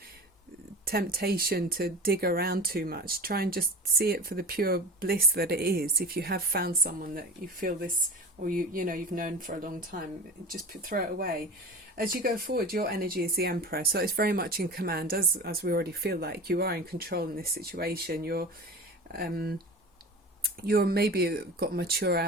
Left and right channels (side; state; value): both; normal; correlation 0.34